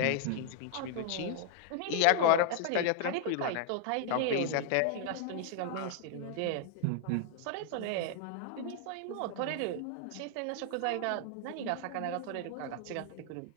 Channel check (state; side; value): different; both; correlation 0.00